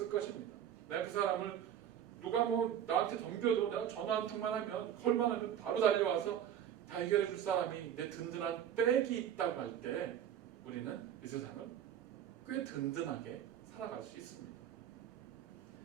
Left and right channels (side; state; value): left; quieter; 9.8 dB